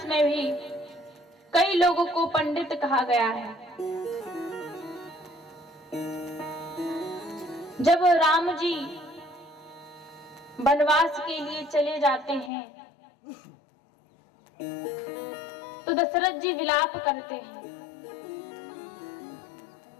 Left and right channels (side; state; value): right; drops out; at 12.5 s